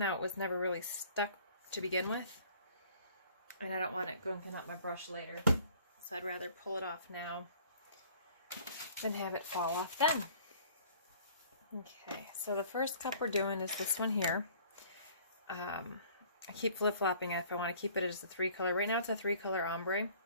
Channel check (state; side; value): inverted; both; correlation -0.53